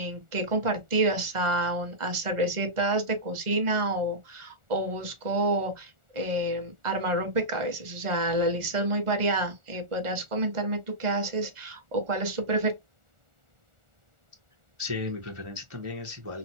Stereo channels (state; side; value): late; left; 1.4 ms